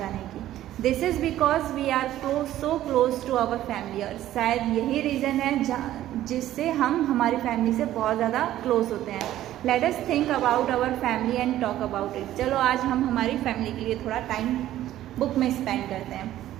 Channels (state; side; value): quieter; left; 13.4 dB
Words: की. This is because we are so close to our family. और शायद यही रीज़न है जिससे हम हमारी फैमिली से बहुत ज़्यादा क्लोज होते हैं. Let us think about our family and talk about it. चलो आज हम हमारी फैमिली के लिए थोड़ा टाइम बुक में स्पेंड करते